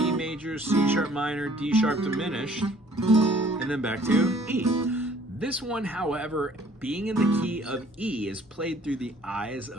major, C sharp minor, D sharp diminished, and then back to E. This one, however, being in the key of E, is played through the eyes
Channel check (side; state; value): both; normal; correlation 0.57